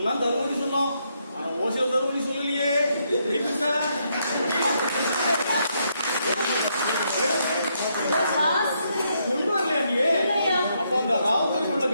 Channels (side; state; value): both; inverted; correlation -0.76